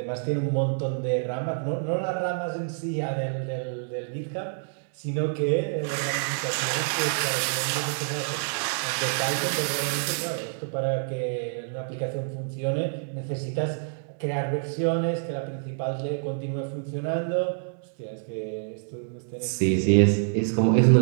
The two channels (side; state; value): left; silent; digital silence